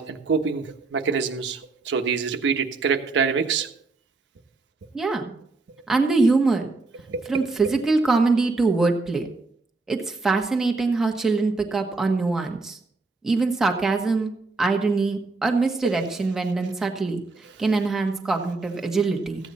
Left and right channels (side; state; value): left; quieter; 3.6 dB